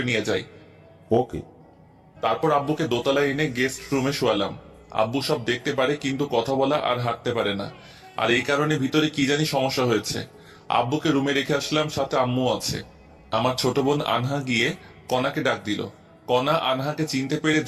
নিয়ে যাই। ওকে। তারপর আব্বুকে দোতলায় এনে গেস্ট রুমে শোয়ালাম। আব্বু সব দেখতে পারে কিন্তু কথা বলা আর হাঁটতে পারে না, আর এই কারণে ভিতরে কি জানি সমস্যা হয়েছে। আব্বুকে রুমে রেখে আসলাম, সাথে আম্মু আছে। আমার ছোট বোন আনহা গিয়ে কনাকে ডাক দিল। কনা আনহাকে চিনতে পেরে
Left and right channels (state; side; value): identical; both; correlation 1.00